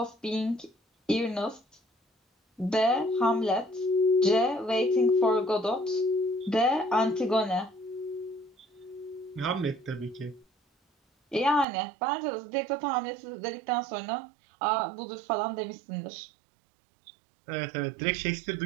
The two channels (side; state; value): left; drops out; at 11.7 s